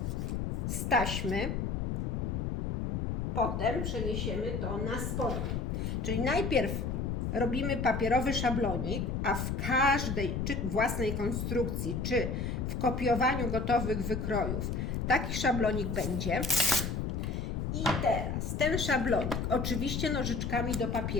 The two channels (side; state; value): left; noise; rumble, 1 dB below the sound